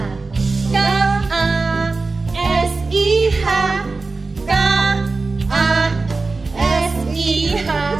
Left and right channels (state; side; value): quieter; left; 3.8 dB